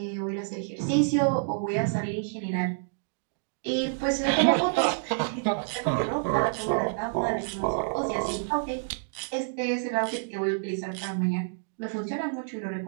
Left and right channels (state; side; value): silent; left; digital silence